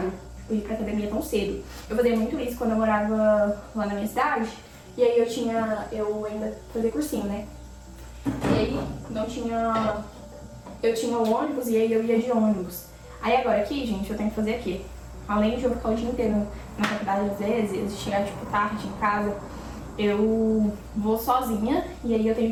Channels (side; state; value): both; identical; correlation 1.00